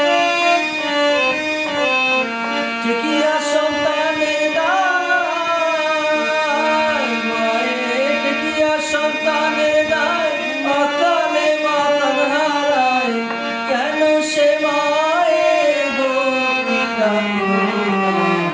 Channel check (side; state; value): both; identical; correlation 1.00